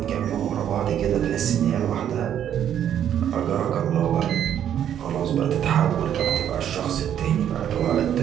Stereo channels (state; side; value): quieter; left; 9.9 dB